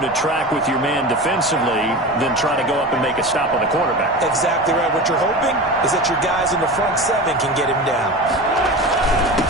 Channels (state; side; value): normal; both; correlation 0.30